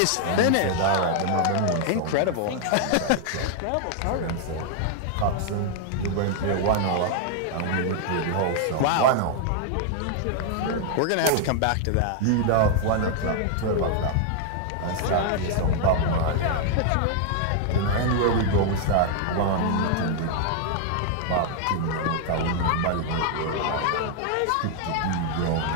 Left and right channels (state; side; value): different; both; correlation 0.00